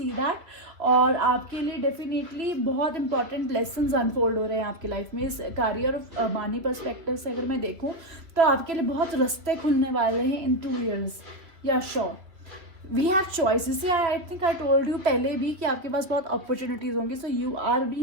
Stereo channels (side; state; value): left; late; 2.9 ms